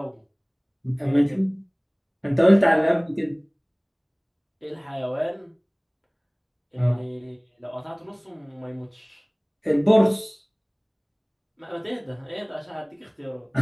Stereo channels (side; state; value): both; identical; correlation 1.00